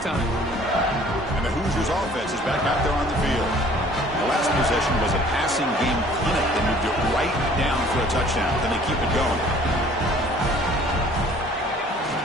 And the Hoosiers offense is back out there on the field. The last possession was a passing game clinic. They moved it right down for a touchdown. Then they keep it going.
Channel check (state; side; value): normal; both; correlation 0.53